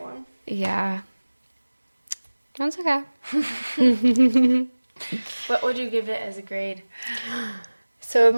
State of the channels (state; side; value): inverted; both; correlation -1.00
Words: 1. Yeah. That's okay. What would you give it as a grade? So